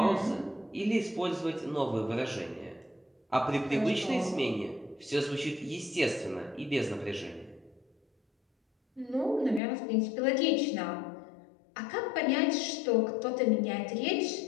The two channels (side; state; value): right; drops out; at 9.6 s